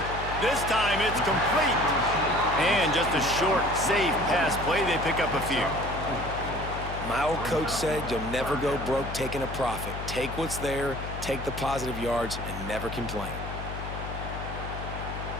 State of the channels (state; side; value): noise; left; hum, 7 dB below the sound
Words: This time it's complete. And just a short, safe pass play. They pick up a few. My old coach said you'll never go broke taking a profit. Take what's there, take the positive yards, and never complain.